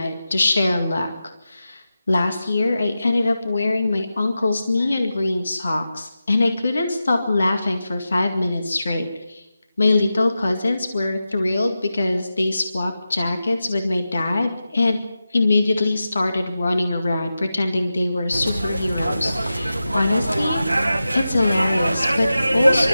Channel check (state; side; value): inverted; both; correlation -0.92